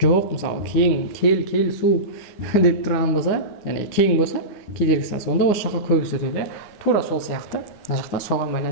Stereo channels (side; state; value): right; late; 9.9 ms